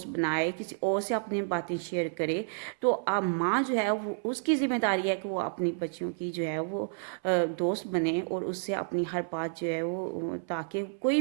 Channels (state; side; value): silent; left; 58 dB below the other